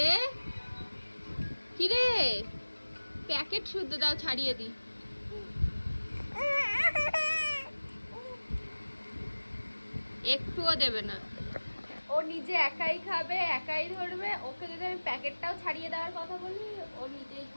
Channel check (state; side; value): inverted; both; correlation -1.00